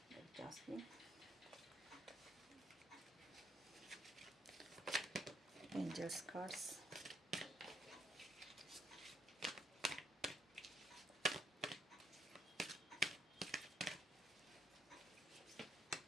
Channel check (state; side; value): normal; both; correlation 0.73